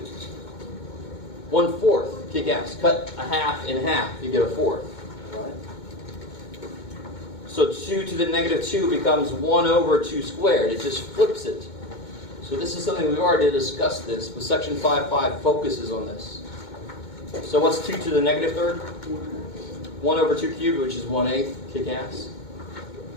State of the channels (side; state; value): right; late; 2.2 ms